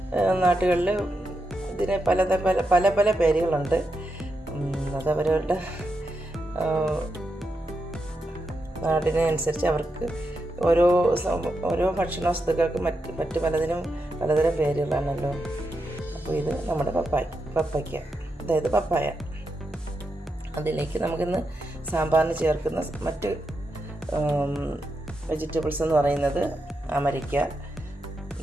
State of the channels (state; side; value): normal; both; correlation 0.85